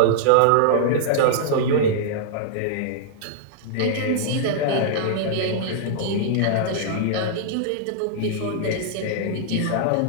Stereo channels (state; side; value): different; both; correlation -0.01